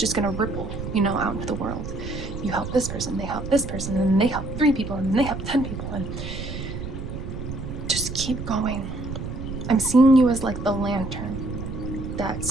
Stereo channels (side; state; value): right; noise; rumble, 7 dB below the sound